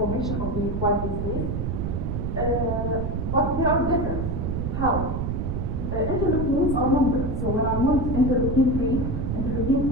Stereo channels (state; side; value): noise; right; rumble, 1 dB below the sound